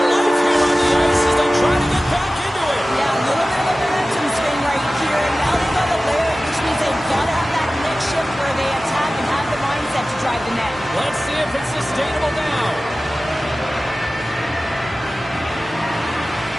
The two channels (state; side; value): normal; both; correlation 0.96